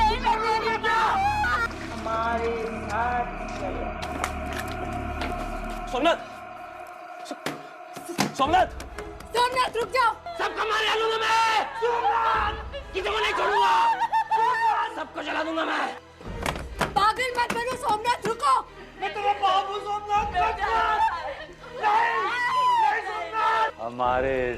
हमारे साथ चलो। सोमनाथ, सोमनाथ, सोमनाथ रुक जाओ। सबको मार डालूंगा मैं। किसी को नहीं छोड़ूंगा। सबको जला दूंगा मैं। पागल मत बनो सोमनाथ, रुको। मैं तेरा बाप हूँ सोमनाथ। नहीं, नहीं सोमनाथ। हमारे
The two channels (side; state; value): both; identical; correlation 1.00